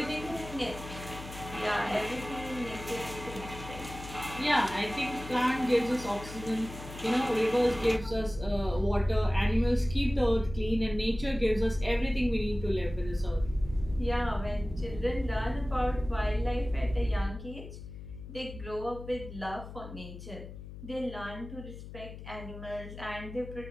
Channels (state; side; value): noise; left; hum, 12 dB below the sound